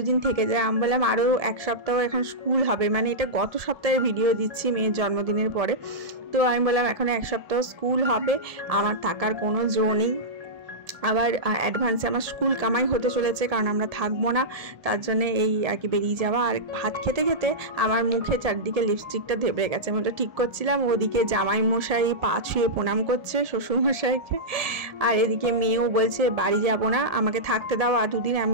দিন থেকে যায়। আমি বললাম আরও 1 সপ্তাহ এখন স্কুল হবে, মানে এটা গত সপ্তাহের ভিডিও দিচ্ছি মেয়ের জন্মদিনের পরে। তো আমি বললাম এখন 1 সপ্তাহ স্কুল হবে, আমার থাকার কোনো জো নেই। আবার অ্যাডভান্সে আমার স্কুল কামাই হতে চলেছে, কারণ আমরা থাকবো না, তার জন্য এই আর কি বেরিয়ে যাওয়া। আর ভাত খেতে খেতে আমার মুখে চারদিকে লিপস্টিকটা ধেবে গেছে, আমি ওটা ঠিক করছিলাম। ওদিকে জামাই মশাই পা ছুঁয়ে প্রণাম করছে শ্বশুর মশাইকে, আর এদিকে মেয়েও বলছে বাড়ি যাব না, আমাকে থাকতে দাও আর 2 দিন। আমি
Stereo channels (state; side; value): late; left; 1.7 ms